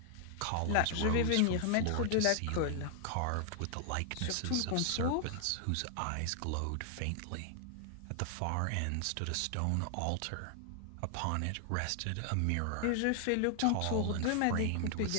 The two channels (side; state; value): both; different; correlation 0.00